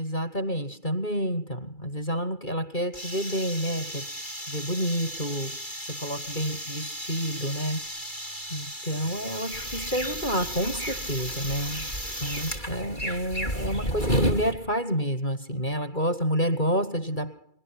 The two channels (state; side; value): late; right; 2.3 ms